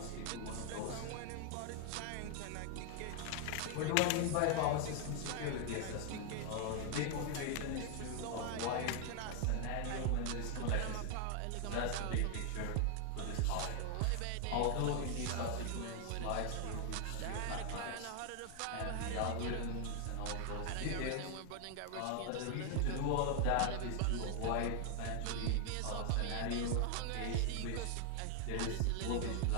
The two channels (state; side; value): different; both; correlation 0.00